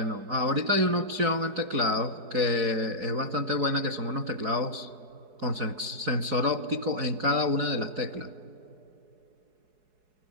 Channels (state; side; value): late; left; 4.7 ms